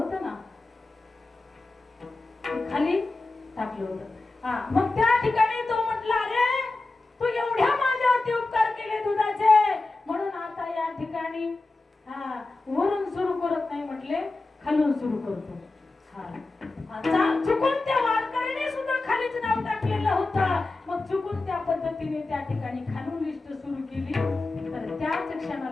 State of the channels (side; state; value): right; quieter; 3.3 dB